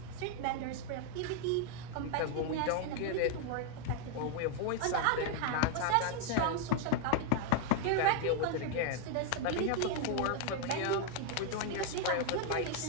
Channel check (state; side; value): different; both; correlation 0.00